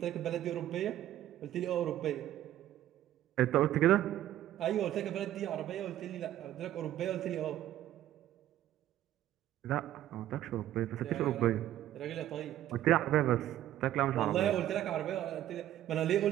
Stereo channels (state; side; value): quieter; left; 12.8 dB